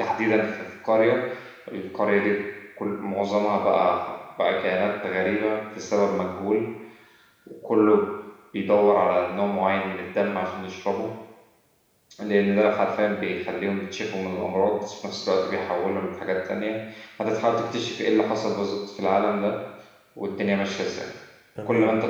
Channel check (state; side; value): identical; both; correlation 1.00